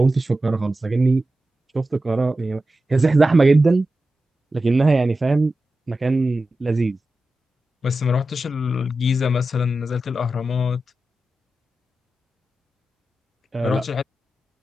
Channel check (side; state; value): both; normal; correlation 0.92